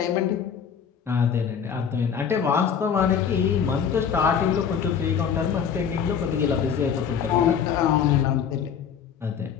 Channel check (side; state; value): right; quieter; 7.5 dB